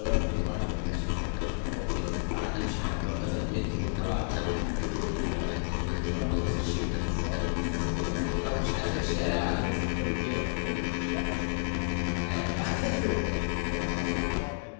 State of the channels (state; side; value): silent; right; 58 dB below the other